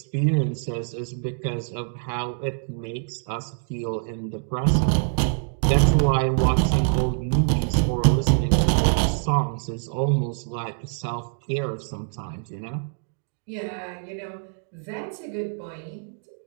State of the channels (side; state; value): left; silent; digital silence